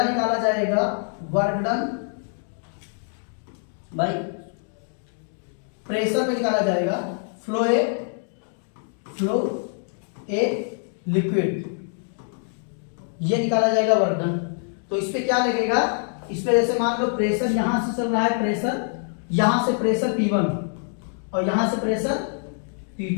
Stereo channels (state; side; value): silent; right; 57 dB below the other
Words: निकाला जाएगा वर्क डन बाय प्रेशर पे निकाला जाएगा फ्लो ए लिक्विड, ये निकाला जाएगा वर्क डन। तो इस पे क्या लगेगा, इस पे जैसे मान लो प्रेशर यहां से चल रहा है, प्रेशर यहां से प्रेशर P1 और यहां से प्रेशर